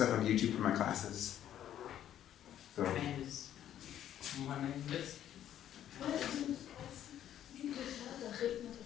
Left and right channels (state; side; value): quieter; right; 11.0 dB